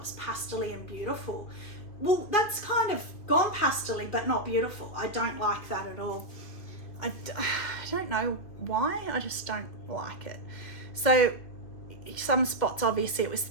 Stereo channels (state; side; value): late; right; 2.7 ms